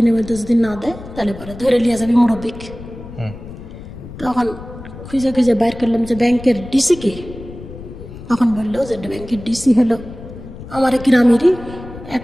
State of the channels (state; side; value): noise; left; rumble, 14 dB below the sound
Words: মধ্যে যদি না দেয় তাহলে পরে ধরে নিয়ে যাবে মুরব্বিক। তখন খুঁজে খুঁজে বাইর করলাম যে ব্যাংকের ডিসি কে। তখন বললো যে ব্যাংকের ডিসি হলো আমার গ্রামেরই এক